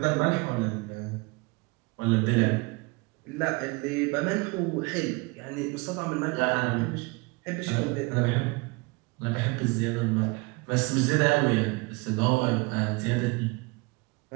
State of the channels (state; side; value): quieter; left; 27.2 dB